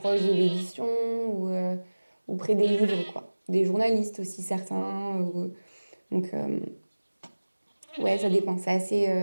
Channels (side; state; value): both; inverted; correlation -1.00